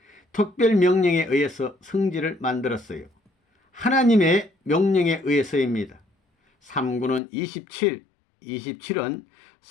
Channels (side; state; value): right; drops out; at 7.2 s